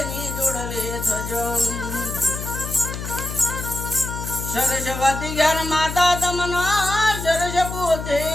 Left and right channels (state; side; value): noise; left; hum, 7 dB below the sound